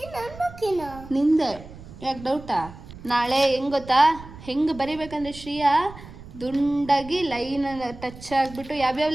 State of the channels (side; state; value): right; noise; rumble, 16 dB below the sound